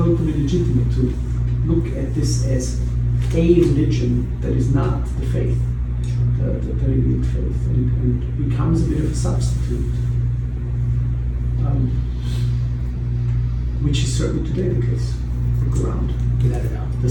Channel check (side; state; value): both; identical; correlation 1.00